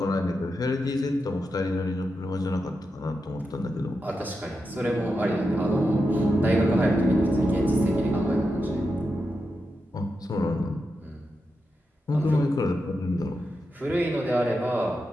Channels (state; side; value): normal; both; correlation 0.88